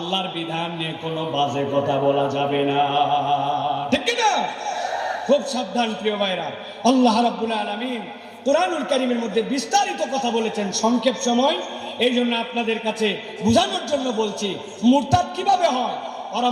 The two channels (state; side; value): identical; both; correlation 1.00